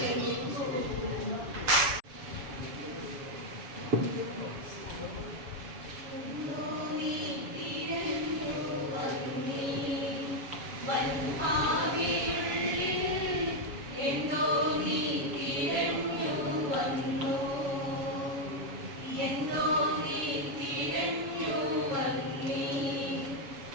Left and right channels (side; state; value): left; late; 7.2 ms